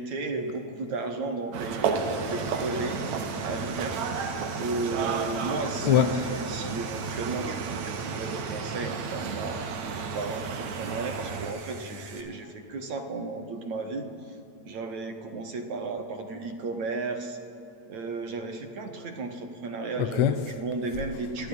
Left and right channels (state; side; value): late; left; 8.9 ms